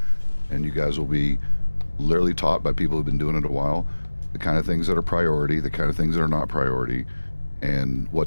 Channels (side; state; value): both; inverted; correlation -1.00